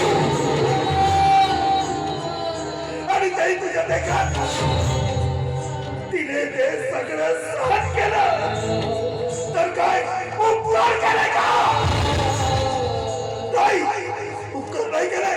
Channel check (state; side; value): identical; both; correlation 1.00